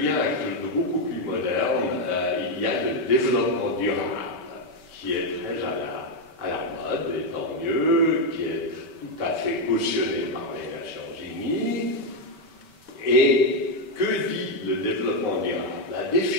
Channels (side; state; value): right; late; 5.2 ms